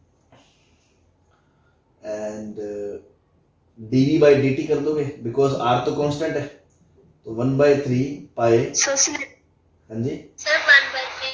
and dv by dt कर दोगे, बिकॉज r तो कांस्टेंट है, तो 1/3 पाई। हाँ जी सर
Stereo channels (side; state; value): both; identical; correlation 1.00